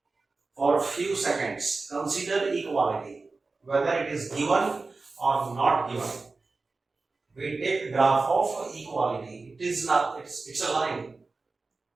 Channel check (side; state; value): left; quieter; 3.8 dB